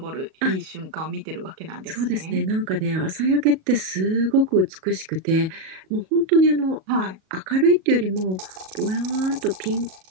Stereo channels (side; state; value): left; late; 37 ms